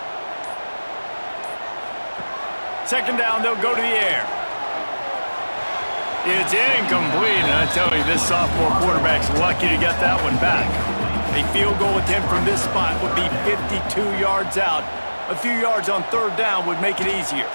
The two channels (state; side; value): inverted; both; correlation -1.00